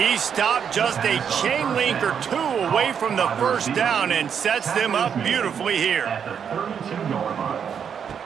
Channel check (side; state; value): left; quieter; 7.6 dB